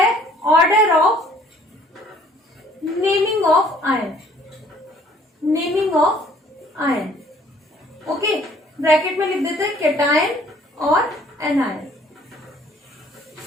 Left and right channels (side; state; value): both; normal; correlation 0.58